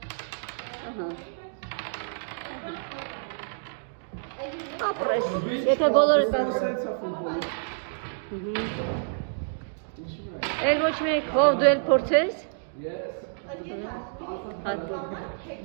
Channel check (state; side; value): silent; left; digital silence